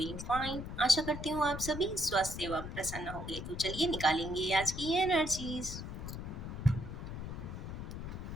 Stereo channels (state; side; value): noise; left; rumble, 7 dB below the sound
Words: fine. आशा करती हूँ आप सभी स्वस्थ एवं प्रसन्न होंगे। तो चलिए निकालेंगे आज की energies.